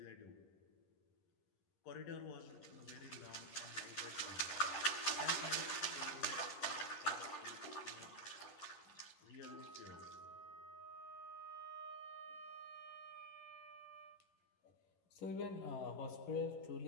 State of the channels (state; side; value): late; right; 11 ms